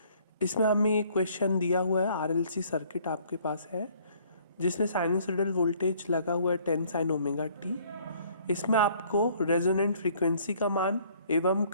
इसमें हमें एक question दिया हुआ है, आरएलसी सर्किट आपके पास है जिसमें साइनसोइडल वोल्टेज लगा हुआ है 10 साइन ओमेगा टी। इसमें आपको रेजोनेंट फ्रीक्वेंसी का मान एवं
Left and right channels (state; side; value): inverted; both; correlation -0.59